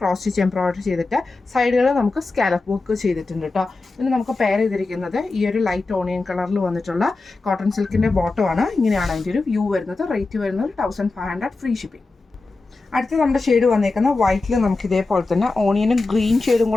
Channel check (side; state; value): right; quieter; 3.5 dB